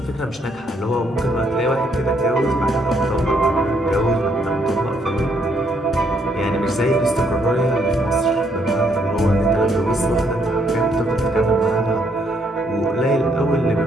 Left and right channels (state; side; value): normal; both; correlation 0.71